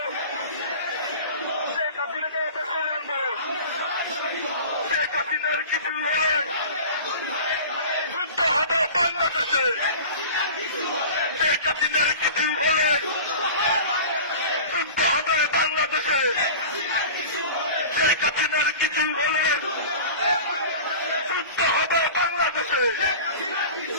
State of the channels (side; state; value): both; inverted; correlation -0.37